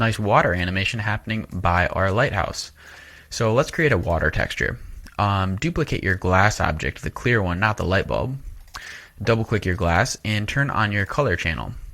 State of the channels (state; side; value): identical; both; correlation 1.00